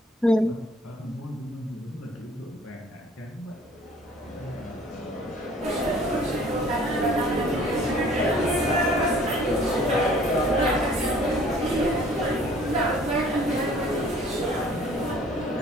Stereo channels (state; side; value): normal; both; correlation 0.54